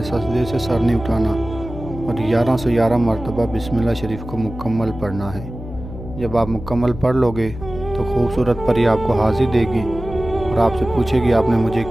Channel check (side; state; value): left; noise; hum, 11 dB below the sound